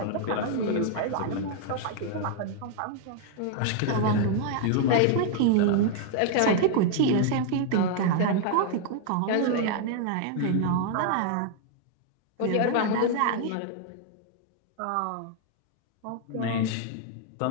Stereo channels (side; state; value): both; different; correlation 0.00